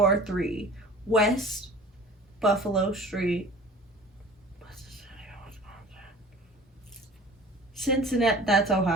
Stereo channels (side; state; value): both; normal; correlation 0.44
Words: West Buffalo Street. Cincinnati, that's